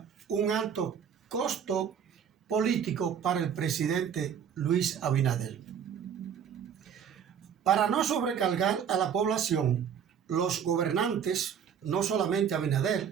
un alto costo político para el presidente Luis Abinader. Para no sobrecargar a la población, los gobernantes, no solamente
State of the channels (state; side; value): quieter; left; 8.0 dB